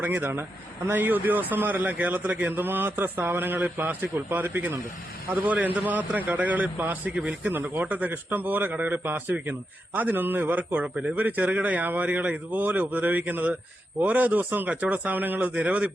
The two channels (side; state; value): both; normal; correlation 0.86